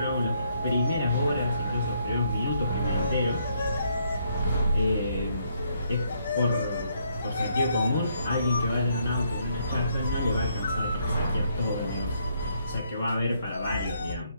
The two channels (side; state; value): both; inverted; correlation -0.72